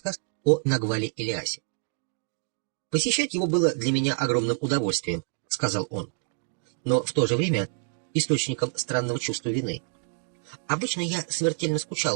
о Нагвале Ильясе. «Посещать его было для меня огромным удовольствием», — сказал он, но в то же время источником странного чувства вины. Обычно я смертельно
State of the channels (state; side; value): silent; left; 60 dB below the other